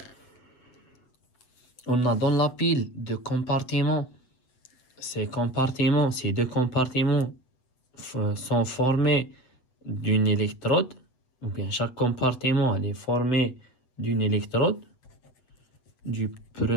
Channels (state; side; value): late; right; 8.1 ms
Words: on a dans la pile de compartiments. Ces deux compartiments sont formés d'une électrode, ou bien chaque compartiment elle est formé d'une électrode, du